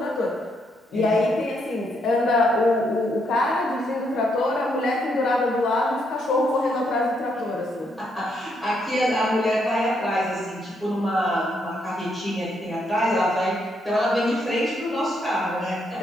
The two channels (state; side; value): normal; both; correlation 0.76